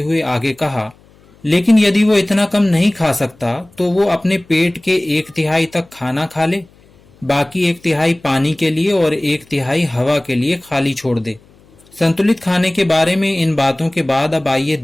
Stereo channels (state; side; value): noise; left; hum, 29 dB below the sound